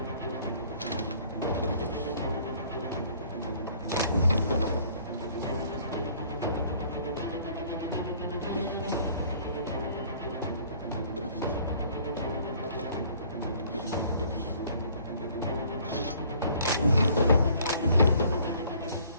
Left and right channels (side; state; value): both; inverted; correlation -0.57